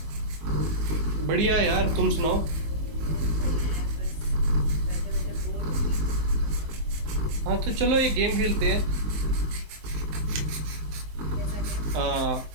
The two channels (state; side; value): late; left; 19 ms